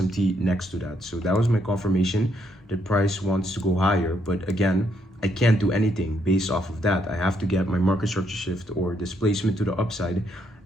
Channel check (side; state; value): both; normal; correlation 0.74